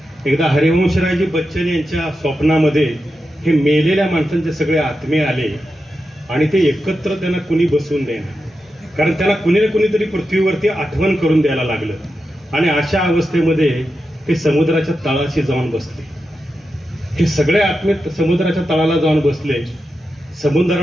एकदा हरिवंशरायजी बच्चन यांच्या स्वप्नामध्ये हे मेलेल्या माणसांचे सगळे आत्मे आले आणि ते एकत्र त्यांना कुणी बसवून देणार, कारण त्यांना कुणी ना कुणीतरी पृथ्वीवरती आठवण करून द्यायला लागलं. आणि अशा अवस्थेमध्ये ते समुद्राच्या तळाशी जाऊन बसले. हे सगळे आत्मे समुद्राच्या तळाला जाऊन बसले.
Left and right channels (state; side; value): normal; both; correlation 0.89